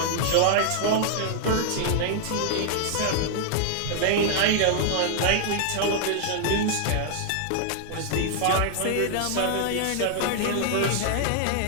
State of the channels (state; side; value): different; both; correlation 0.00